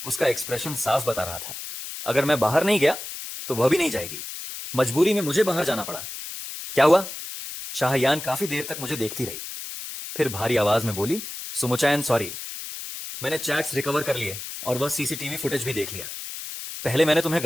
उसका एक्सप्रेशन साफ बता रहा था, अगर मैं बाहर नहीं गया तो वह भी नहीं जाएगी। मजबूरी में मुझे बाहर जाना पड़ा। क्या हुआ? शाहयान काफी देर तक मुझे देखती रही, फिर भारी आवाज में बोली, सुमुचैन सॉरी, मैंने चैट्स रिकवर कर लिए और वह सीसीटीवी फुटेज भी देख लिया। पहले मैंने तुम्हें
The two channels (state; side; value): noise; left; hiss, 9 dB below the sound